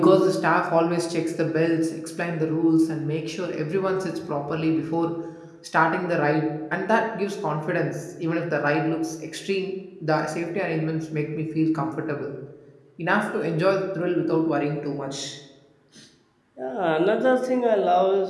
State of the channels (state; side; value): identical; both; correlation 1.00